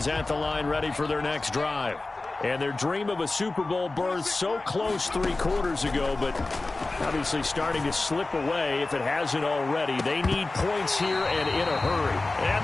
at the line ready for their next drive. And their dream of a Super Bowl berth so close 3 quarters ago, but obviously starting to slip away if it hasn't already. They need points here and in a hurry. And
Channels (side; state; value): right; quieter; 3.2 dB